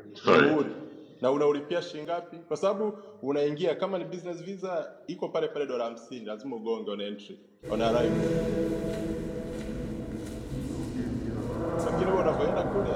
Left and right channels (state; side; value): identical; both; correlation 1.00